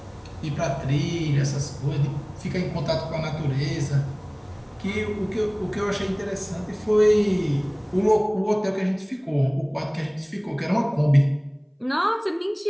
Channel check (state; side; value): identical; both; correlation 1.00